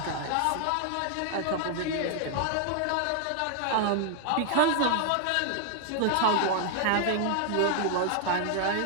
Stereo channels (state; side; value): different; both; correlation 0.00